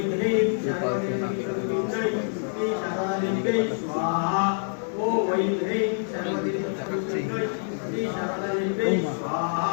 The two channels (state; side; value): silent; right; digital silence